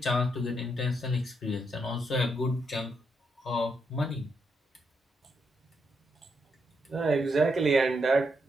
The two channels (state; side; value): normal; both; correlation 0.80